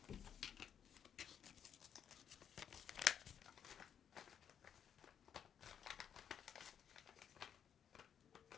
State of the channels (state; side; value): quieter; right; 8.5 dB